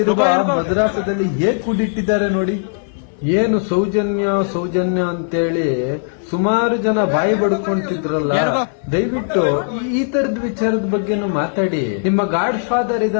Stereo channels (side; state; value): right; silent; 62 dB below the other